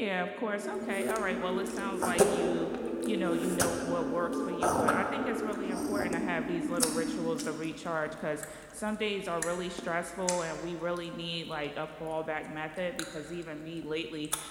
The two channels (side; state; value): both; identical; correlation 1.00